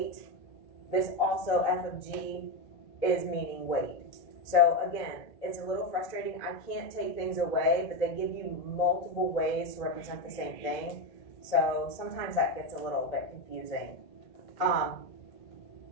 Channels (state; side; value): late; right; 1.8 ms